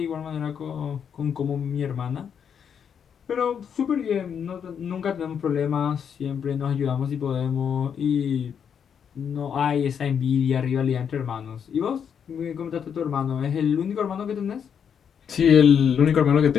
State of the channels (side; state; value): right; quieter; 7.6 dB